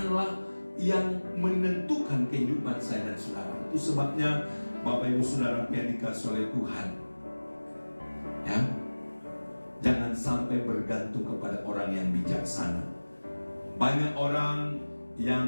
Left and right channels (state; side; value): inverted; both; correlation -1.00